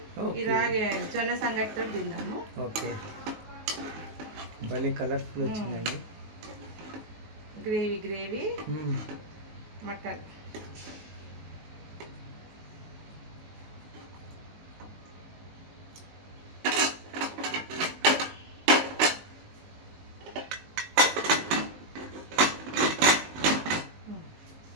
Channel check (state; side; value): late; left; 19 ms